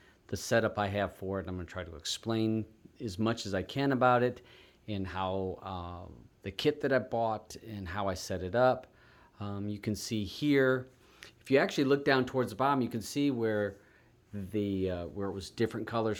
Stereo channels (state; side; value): identical; both; correlation 1.00